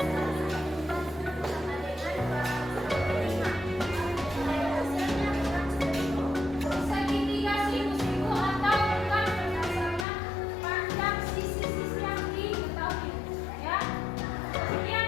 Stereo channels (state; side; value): drops out; right; at 10.1 s